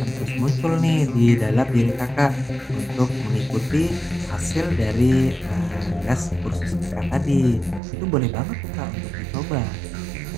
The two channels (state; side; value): drops out; left; at 7.8 s